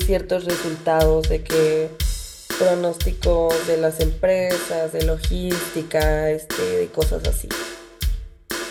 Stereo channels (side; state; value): both; identical; correlation 1.00